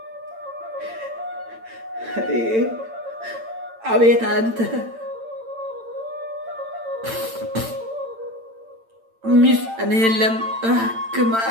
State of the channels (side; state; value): left; late; 8.9 ms